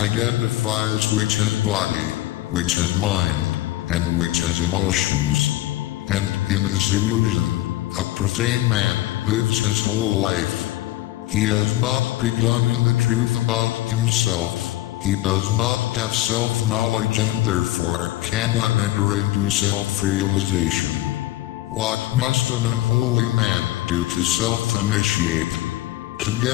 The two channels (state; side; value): quieter; right; 16.2 dB